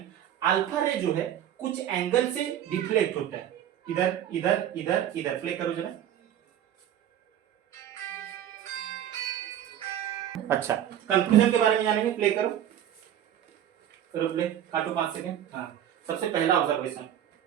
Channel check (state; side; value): quieter; left; 10.7 dB